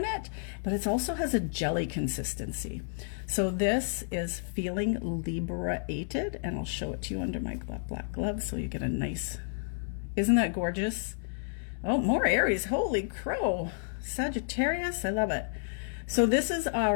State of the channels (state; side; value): silent; right; digital silence